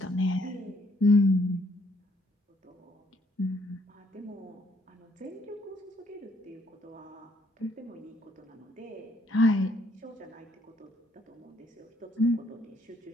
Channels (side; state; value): both; normal; correlation 0.68